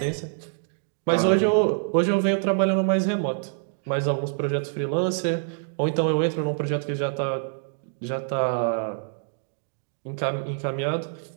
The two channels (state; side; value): silent; left; digital silence